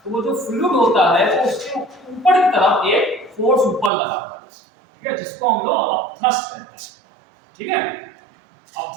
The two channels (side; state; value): left; drops out; at 3.9 s